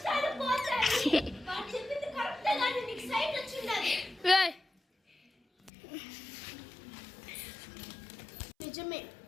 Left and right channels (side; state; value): right; drops out; at 5.7 s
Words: పోతాయి. వాడు చెప్పింది కరెక్టే కానీ నీకు సైట్ వచ్చింది. నిజమే,